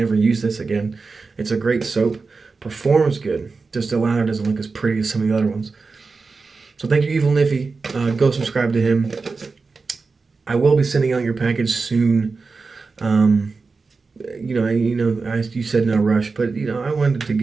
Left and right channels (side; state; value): left; quieter; 4.3 dB